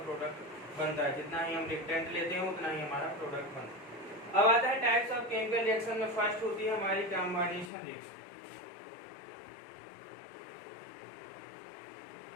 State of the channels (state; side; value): drops out; right; at 7.7 s